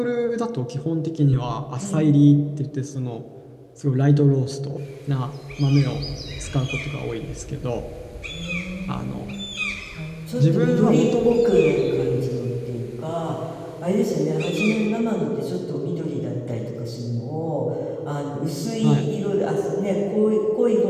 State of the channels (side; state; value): both; identical; correlation 1.00